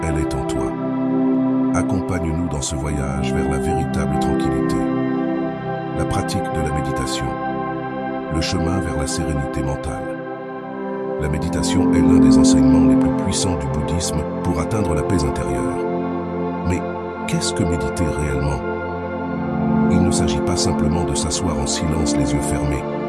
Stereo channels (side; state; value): both; identical; correlation 1.00